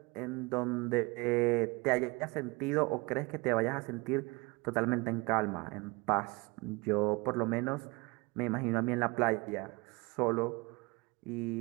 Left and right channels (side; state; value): left; quieter; 25.7 dB